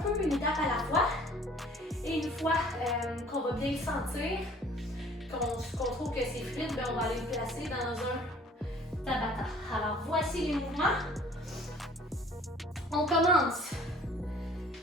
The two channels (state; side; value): normal; both; correlation 0.52